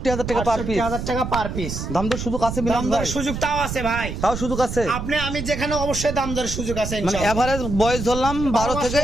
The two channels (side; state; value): right; noise; rumble, 5 dB below the sound